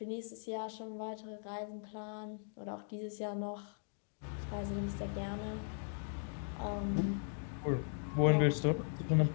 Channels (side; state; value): right; silent; digital silence